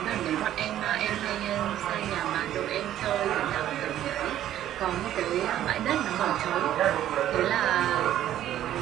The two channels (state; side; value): quieter; left; 12.0 dB